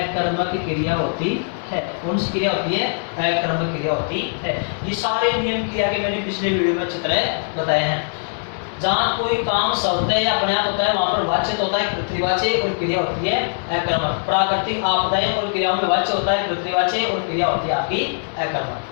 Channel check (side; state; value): right; silent; 57 dB below the other